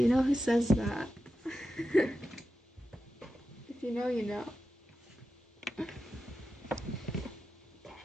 know who says that? If you know, you know.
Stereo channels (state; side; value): normal; both; correlation 0.91